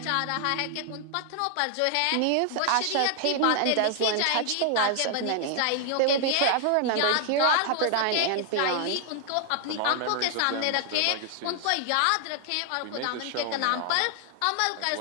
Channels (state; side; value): different; both; correlation 0.00